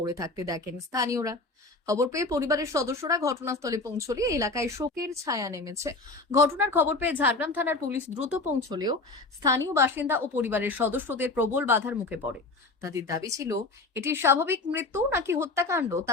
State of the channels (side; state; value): right; quieter; 3.4 dB